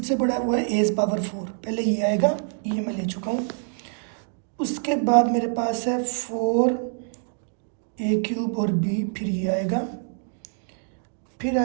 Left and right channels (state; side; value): silent; left; 61 dB below the other